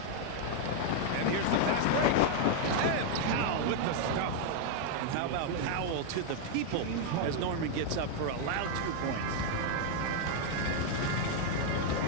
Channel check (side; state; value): both; different; correlation 0.00